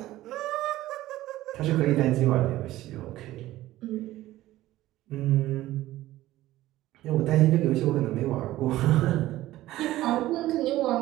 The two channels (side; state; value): left; quieter; 15.7 dB